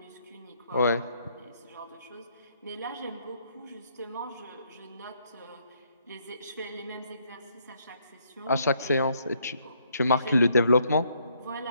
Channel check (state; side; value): inverted; both; correlation -0.71